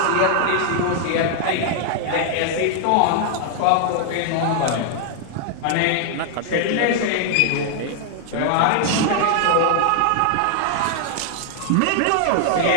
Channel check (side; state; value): both; different; correlation 0.00